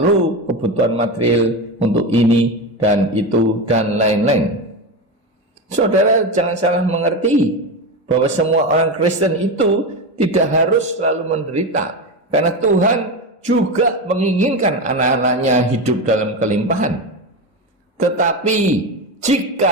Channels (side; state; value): both; normal; correlation 0.18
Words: kebutuhan material untuk ini dan itu dan lain-lain. Saudara jangan salah mengerti bahwa semua orang Kristen itu tidak harus selalu menderita, karena Tuhan juga menginginkan anak-anaknya hidup dalam kelimpahan. Tetapi